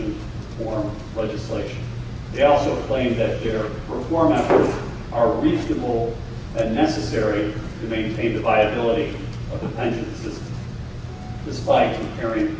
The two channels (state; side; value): identical; both; correlation 1.00